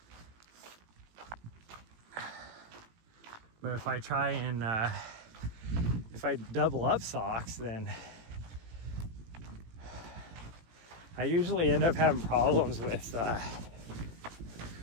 But if I try and if I double up socks, then I usually end up having problems with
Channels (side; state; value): left; late; 18 ms